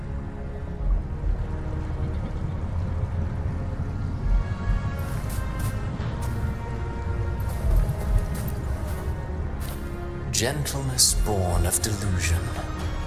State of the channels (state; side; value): identical; both; correlation 1.00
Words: Gentleness born of delusion.